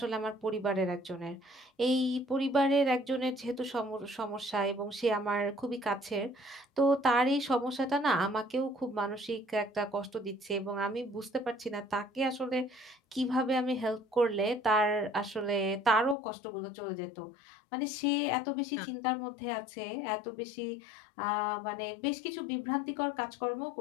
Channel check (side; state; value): right; drops out; at 16.2 s